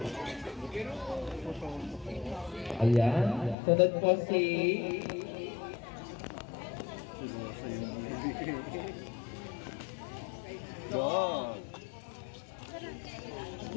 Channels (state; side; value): drops out; right; at 3.6 s